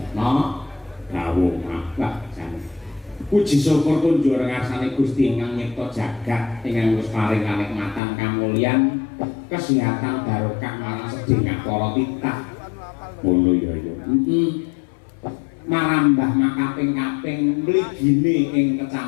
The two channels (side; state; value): right; drops out; at 8.0 s